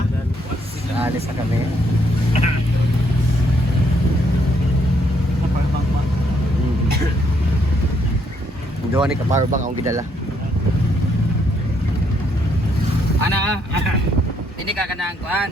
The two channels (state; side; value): normal; both; correlation 0.72